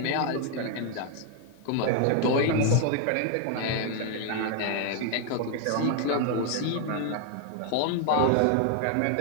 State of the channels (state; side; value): different; both; correlation 0.00